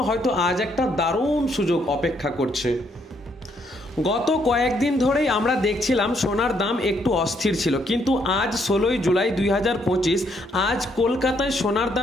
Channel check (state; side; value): normal; both; correlation 0.71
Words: হয়তো আজ একটা দারুণ সুযোগ অপেক্ষা করছে। গত কয়েকদিন ধরেই আমরা দেখছিলাম সোনার দাম একটু অস্থির ছিল, কিন্তু আজ 16ই জুলাই 2025 আজ কলকাতায় সোনার